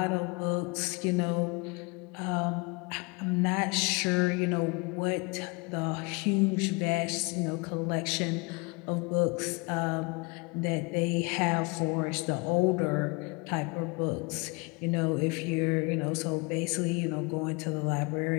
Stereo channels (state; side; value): quieter; right; 28.8 dB